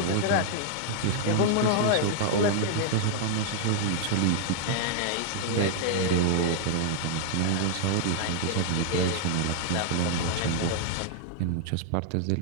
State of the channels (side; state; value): both; different; correlation 0.00